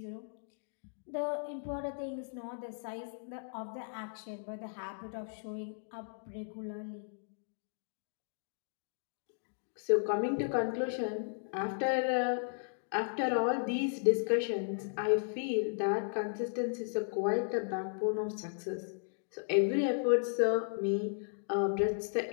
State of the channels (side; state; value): right; silent; digital silence